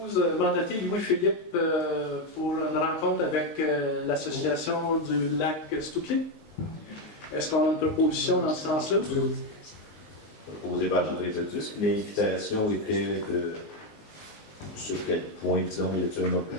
mandaté Louis-Philippe pour une rencontre avec l'association du lac Stouclé. Est-ce qu'on a une proposition dans ce sens-là? Proposé par André Leduc. L'invitation était de... Sur quel point, disons, y a-t-il un autre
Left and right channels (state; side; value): late; right; 19 ms